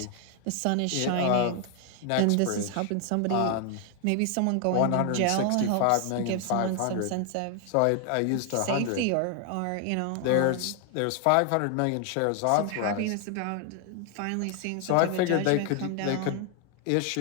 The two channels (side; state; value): both; different; correlation 0.00